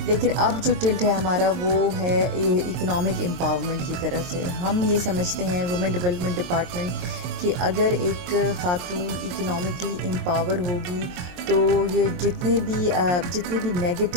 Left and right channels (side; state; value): left; late; 22 ms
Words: لیکن اب جو ٹلٹ ہے ہمارا وہ ہے اکنامک امپاورمنٹ کی طرف سے. ہم یہ سمجھتے ہیں وومن ڈیولپمنٹ ڈپارٹمنٹ کہ اگر ایک خاتون اکنامکلی امپاور ہوگی تو یہ جتنے بھی